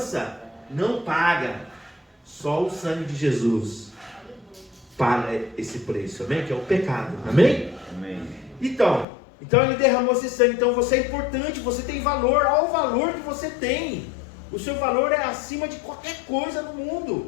não paga. Só o sangue de Jesus paga esse preço, amém? Que é o pecado, amém? Amém. Então ele derramou esse sangue. Então você é importante, você tem valor. Olha o valor que você tem. O seu valor é acima de qualquer coisa no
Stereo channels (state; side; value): drops out; right; at 9.1 s